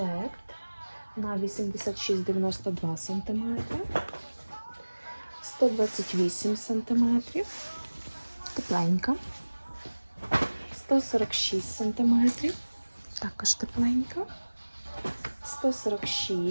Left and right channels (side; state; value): both; inverted; correlation -1.00